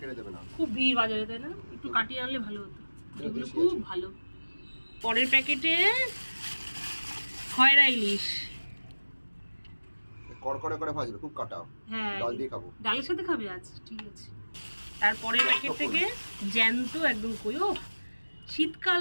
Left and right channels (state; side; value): inverted; both; correlation -1.00